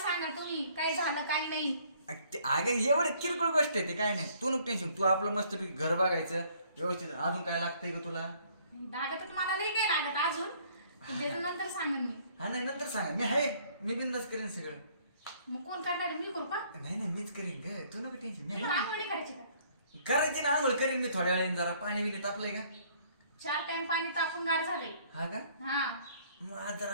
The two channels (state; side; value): inverted; both; correlation -0.61